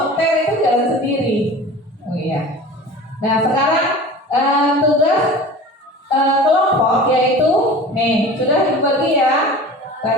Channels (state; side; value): normal; both; correlation 0.38